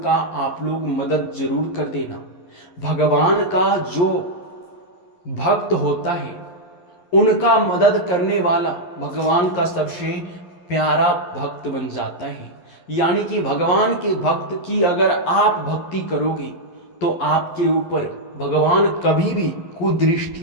आप लोग मदद जरूर कर देना। भगवान का जो भक्त होता है, उनका मदद करने वाला भगवान का सबसे प्यारा भक्त बन जाता है। यानी कि भगवान के भक्त की अगर आप भक्ति करोगे तो आपके ऊपर भगवान कभी भी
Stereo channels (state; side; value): late; right; 11 ms